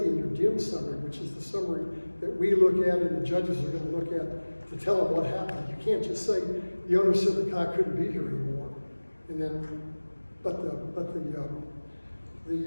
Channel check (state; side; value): inverted; both; correlation -1.00